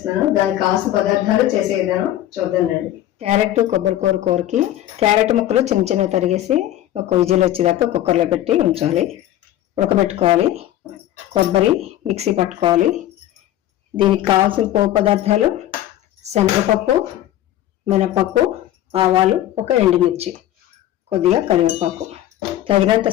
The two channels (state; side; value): quieter; right; 13.2 dB